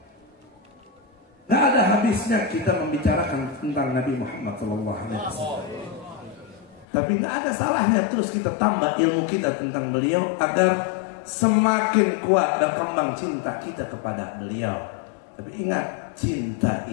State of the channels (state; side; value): drops out; right; at 6.9 s